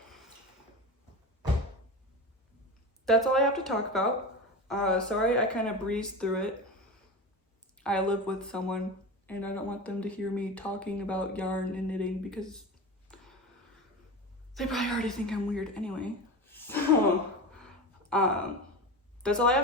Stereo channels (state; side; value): normal; both; correlation 0.26